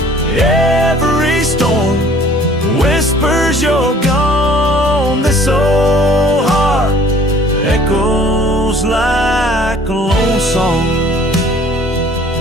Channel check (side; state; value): both; normal; correlation 0.53